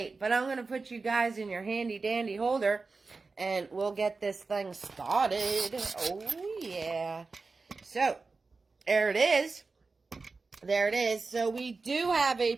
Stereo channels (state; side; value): quieter; left; 4.1 dB